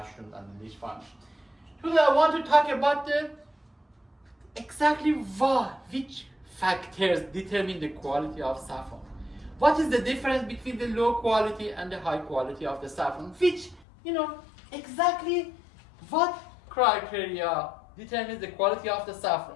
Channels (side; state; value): right; drops out; at 13.9 s